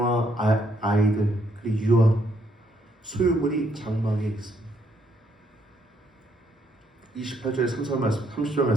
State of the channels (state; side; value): normal; both; correlation 0.72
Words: 아이들, 그리고 유아, 소유물이 장막에 있습니다. 28절의 30절